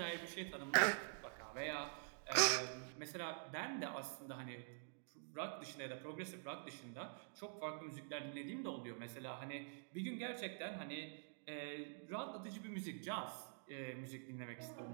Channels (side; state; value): left; silent; digital silence